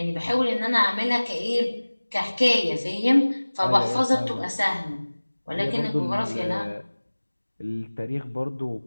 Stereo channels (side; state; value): both; inverted; correlation -1.00